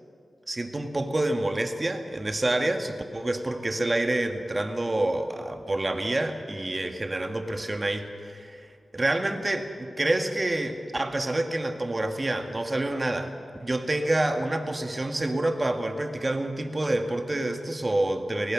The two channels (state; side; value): normal; both; correlation 0.98